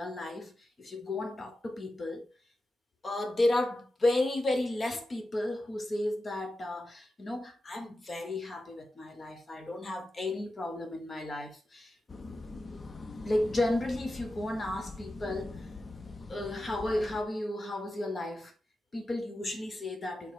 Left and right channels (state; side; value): normal; both; correlation 0.92